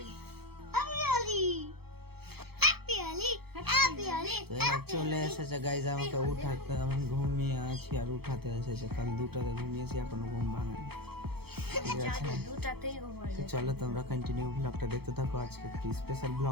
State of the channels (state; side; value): late; left; 0.96 ms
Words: চলে এসেছে গাইজ আমাকে উঠাতে। আমি ঘুমিয়ে আছি আর উঠাতে এসেছে। কাল 2টাতে ঘুমিয়েছি, এখনো ঘুম ভাঙেনি, ঠিক আছে। তো চলো তোমরা কন্টিনিউ ব্লগটা দেখতে থাকো। আজকে একটি স্পেশাল